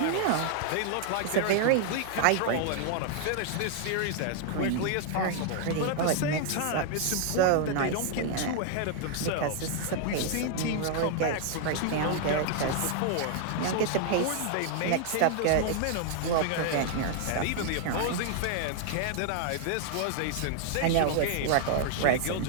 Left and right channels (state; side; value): different; both; correlation 0.00